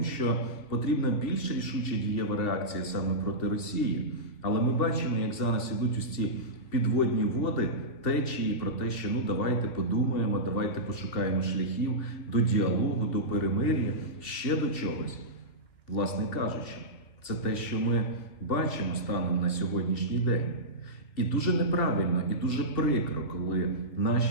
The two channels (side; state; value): right; late; 2.7 ms